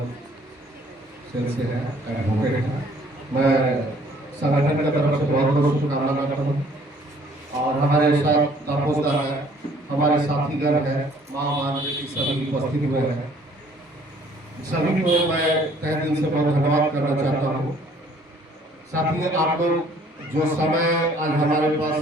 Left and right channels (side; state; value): both; normal; correlation 0.59